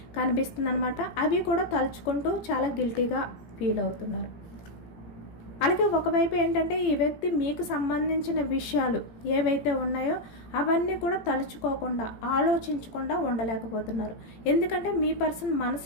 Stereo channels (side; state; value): right; late; 17 ms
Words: కనిపిస్తుంది అనమాట. అవి కూడా తలుచుకుంటూ చాలా గిల్టీగా ఫీల్ అవుతున్నారు. అలాగే ఒకవైపు ఏంటంటే ఈ వ్యక్తి మీకు సంబంధించిన విషయాలు ఏవైతే ఉన్నాయో అవన్నీ కూడా తలుచుకోకుండా ఆలోచించకుండా ఉండలేకపోతున్నారు. ఎందుకంటే మీ పర్సన్